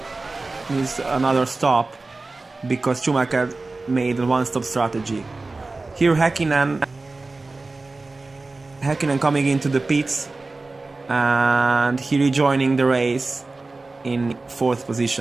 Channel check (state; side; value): quieter; left; 3.4 dB